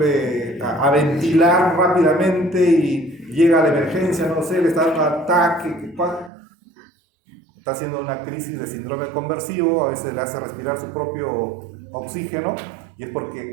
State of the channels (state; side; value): drops out; left; at 6.3 s